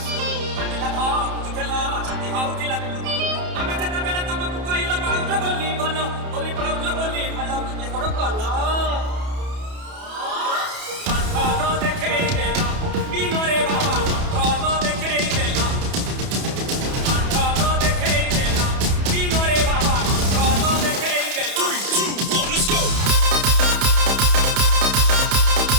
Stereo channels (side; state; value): left; late; 31 ms